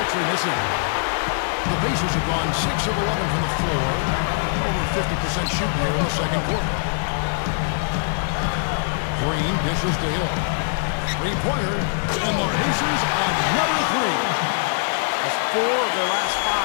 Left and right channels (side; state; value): right; silent; digital silence